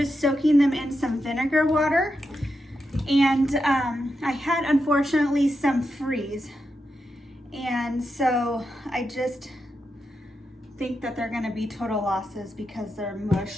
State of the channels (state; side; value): normal; both; correlation 0.86